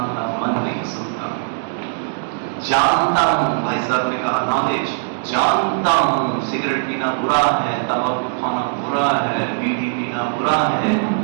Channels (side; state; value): left; silent; digital silence